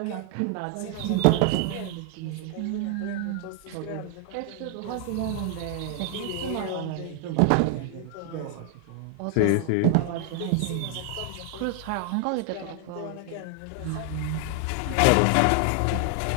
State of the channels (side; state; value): both; different; correlation 0.00